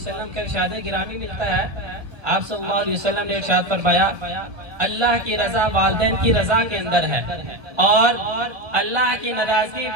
का इरशाद गिरामी मिलता है, आप सल्लल्लाहु अलैहि वसल्लम ने इरशाद फरमाया अल्लाह की रजा वालिदैन की रजा के अंदर है और अल्लाह की नाराजगी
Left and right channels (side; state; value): left; late; 1.2 ms